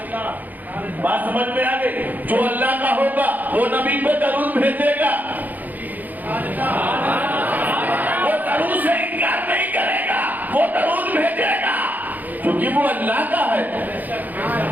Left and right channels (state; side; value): late; left; 0.083 ms